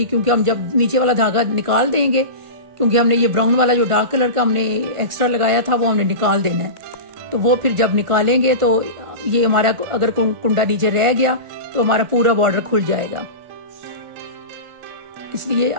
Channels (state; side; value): late; left; 1.4 ms